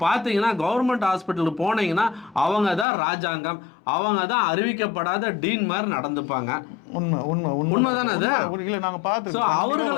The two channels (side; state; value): right; drops out; at 2.9 s